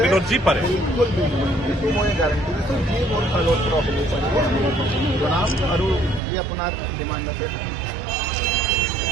যি পাৰে মই গাৰণ্টি দিছোঁ যি মোৰ ফালৰ পৰা জনাম। আৰু যি আপোনাৰ ডিমাণ্ড আছে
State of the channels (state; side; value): drops out; left; at 6.2 s